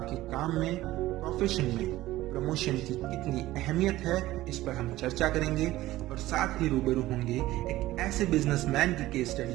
काम में, प्रोफेशन में प्रमोशन की कितनी अहमियत है, इस पर हम चर्चा करेंगे। और साथ ही रूबरू होंगे एक ऐसे बिजनेसमैन की केस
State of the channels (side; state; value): left; quieter; 16.4 dB